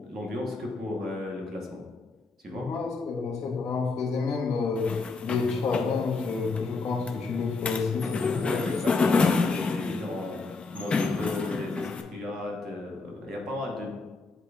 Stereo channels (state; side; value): quieter; right; 3.9 dB